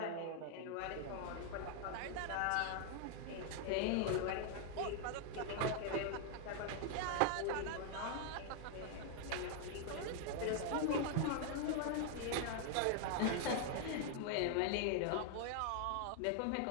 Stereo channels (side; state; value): both; different; correlation 0.00